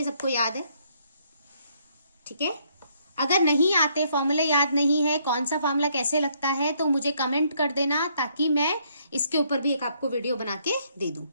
सबको याद है, ठीक है। अगर नहीं आते, फॉर्मूले याद नहीं है, कौन सा फॉर्मूला कैसे लगता है, तो मुझे कमेंट कर देना, ताकि मैं इसके ऊपर भी एक आपको वीडियो बना के दे दूं,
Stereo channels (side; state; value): both; inverted; correlation -0.69